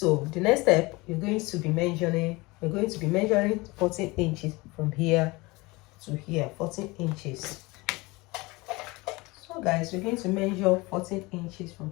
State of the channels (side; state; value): right; quieter; 23.5 dB